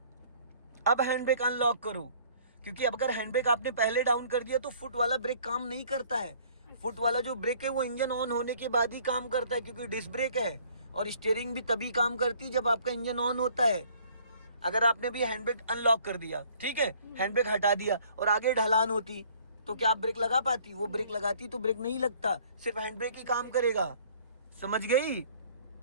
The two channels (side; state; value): both; inverted; correlation -0.57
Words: अब हैंड ब्रेक अनलॉक करो, क्योंकि अब अगर हैंड ब्रेक आपने पहले डाउन कर दिया तो फुट वाला ब्रेक काम नहीं करता है। फुट वाला जो ब्रेक है वो इंजन ऑन होने के बाद ही काम करता है, क्योंकि डिस्क ब्रेक है। और स्टीयरिंग भी तभी काम करती है जब आपका इंजन ऑन होता है। अगर आपने भी हैंड ब्रेक अनलॉक कर दिया, ठीक है, हैंड ब्रेक हटा दिया और आगे ढलान होती तो क्या आप ब्रेक लगा पाती? वो ब्रेक लगाती तो ब्रेक नहीं लगता, सिर्फ हैंड ब्रेक ही काम करेगा। समझ गई?